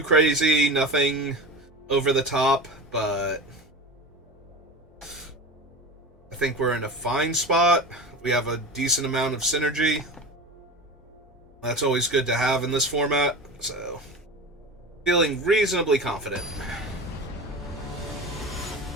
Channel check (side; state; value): both; normal; correlation 0.30